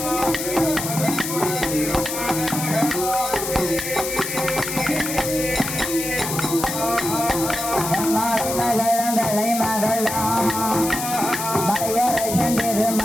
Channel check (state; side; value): noise; left; hiss, 5 dB below the sound